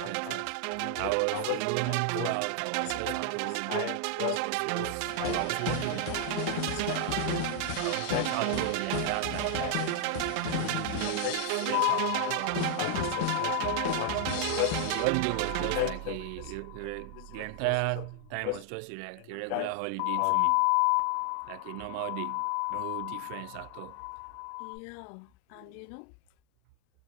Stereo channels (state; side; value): different; both; correlation 0.00